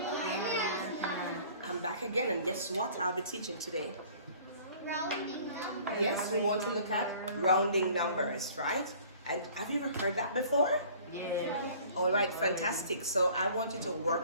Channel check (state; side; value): inverted; both; correlation -0.51